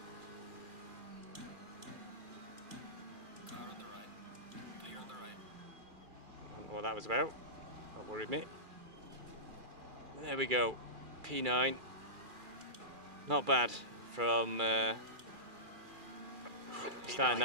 Car on the right. Clear on the right. I don't know what that was about. That worried me. There we go. P9. Not bad from starting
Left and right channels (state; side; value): late; left; 2.3 ms